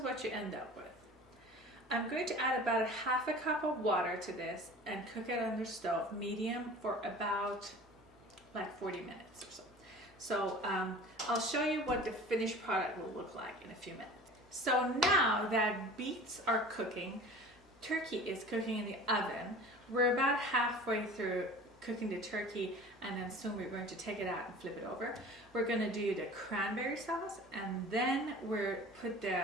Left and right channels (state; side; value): normal; both; correlation 0.41